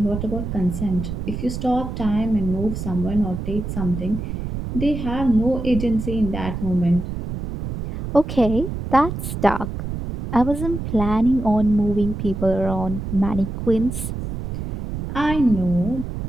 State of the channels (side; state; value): right; noise; rumble, 6 dB below the sound